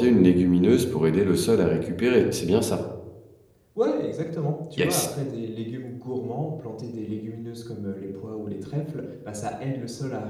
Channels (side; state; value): both; identical; correlation 1.00